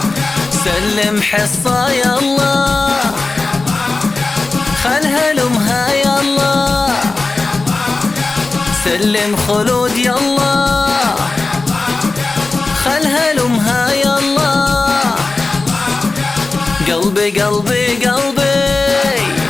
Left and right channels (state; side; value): quieter; right; 3.5 dB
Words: سلم حصة يلا خلها لأمها يلا سلم خلود يلا خلها لأمها يلا قلبي قلبي قلبي